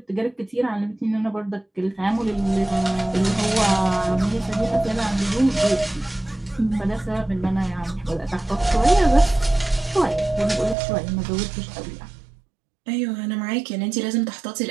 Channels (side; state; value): left; drops out; at 10.8 s